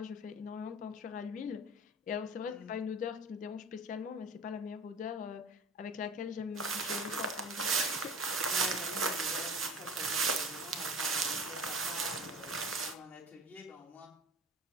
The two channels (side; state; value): both; normal; correlation 0.38